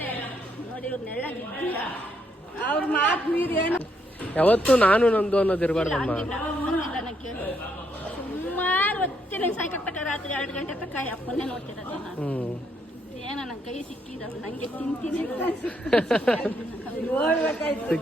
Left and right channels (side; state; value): both; normal; correlation 0.75